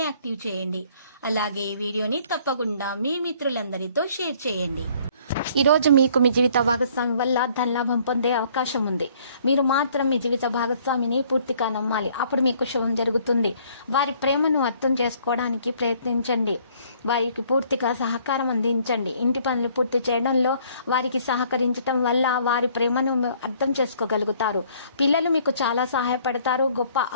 యాక్టివ్ చేయండి. అలాగే ఈ వీడియోని తప్పకుండా మీ మిత్రులందరితో షేర్ చేయండి. ఈ రోజు మీకు మీ జీవిత భాగస్వామి వల్ల ధనలాభం పొందే అవకాశం ఉంది. మీరు మాత్రం మీ జీవిత భాగస్వామిని పూర్తిగా నమ్మాలి. అప్పుడు మీకు శుభం జరుగుతుంది. వారి ప్రేమను అర్థం చేసుకోవడానికి ప్రయత్నించండి. వారికి పూర్తిగా సహకారం అందించండి. ఇంటి పనులు పూర్తి చేయడంలో వారికి సహకరించడం వల్ల వారి ప్రేమను అర్థం చేసుకోగలుగుతారు. పిల్లలు మీకు చాలా సహాయపడతారు. గొప్ప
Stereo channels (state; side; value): inverted; both; correlation -0.60